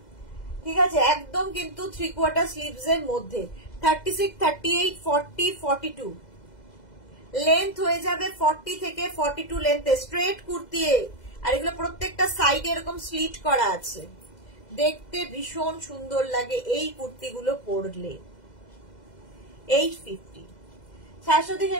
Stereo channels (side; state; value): right; late; 2.0 ms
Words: ঠিক আছে, একদম কিন্তু 3/4 স্লিভস এর মধ্যে। 36, 38, 40, 42, লেন্থ হয়ে যাবে 40 থেকে 42 লেন্থে, স্ট্রেট কুর্তি। আর এগুলো প্রত্যেকটা সাইডে এরকম স্লিট করা আছে, দেখতে ভীষণ সুন্দর লাগে এই কুর্তিগুলো পরলে। 850। শাশ্বতী